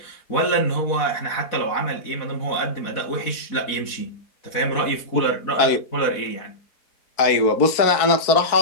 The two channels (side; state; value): right; late; 4.6 ms